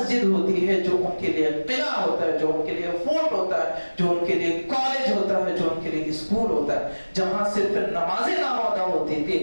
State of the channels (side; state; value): both; inverted; correlation -1.00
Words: ہوتی ہے جو ان کے لیے قلعہ ہوتا ہے، جو ان کے لیے فورٹ ہوتا ہے، جو ان کے لیے کالج ہوتا ہے، جو ان کے لیے اسکول ہوتا ہے، جہاں صرف نمازیں نہ ادا ہوتی تھی